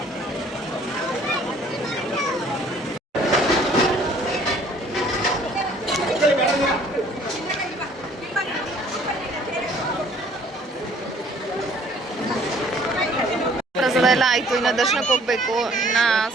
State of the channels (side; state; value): both; normal; correlation 0.57